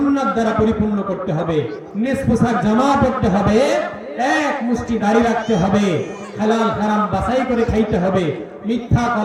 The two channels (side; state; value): both; identical; correlation 1.00